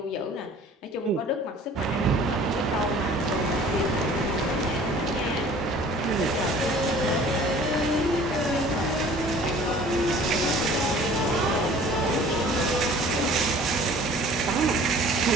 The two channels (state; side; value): normal; both; correlation 0.49